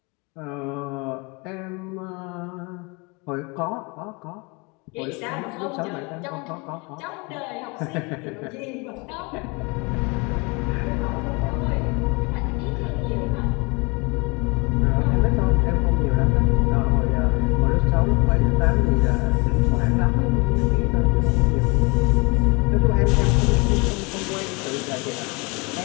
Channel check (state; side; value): quieter; right; 28.8 dB